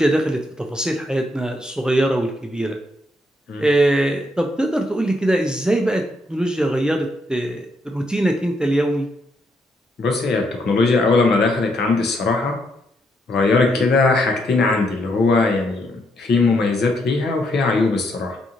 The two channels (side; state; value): both; normal; correlation 0.76